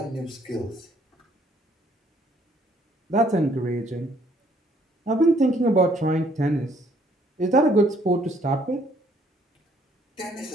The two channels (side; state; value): both; normal; correlation 0.64